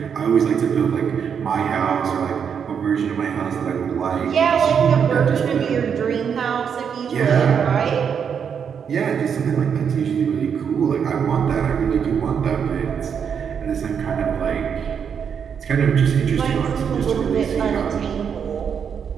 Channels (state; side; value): quieter; left; 7.3 dB